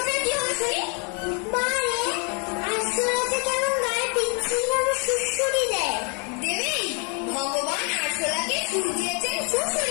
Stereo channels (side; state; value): right; quieter; 36.8 dB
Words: ওঠে কি হবে শুনি? বারে আসলাতে কেমন গায়ে পিচ্ছিল ভাবে সুড়সুড়ি দেয়। দেবেই, ভগবান আরশোলাকে সুর দিয়েছেন